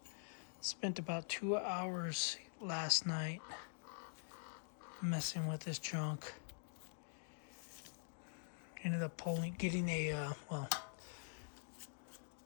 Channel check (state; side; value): silent; right; digital silence